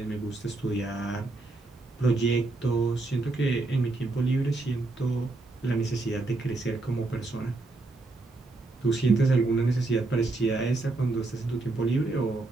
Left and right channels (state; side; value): quieter; left; 3.3 dB